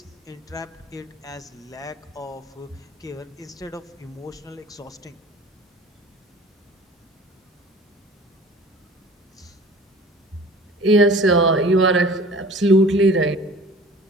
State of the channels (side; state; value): both; normal; correlation 0.45